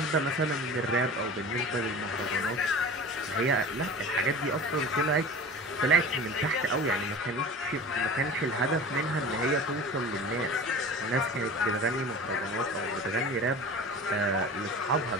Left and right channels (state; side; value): normal; both; correlation 0.36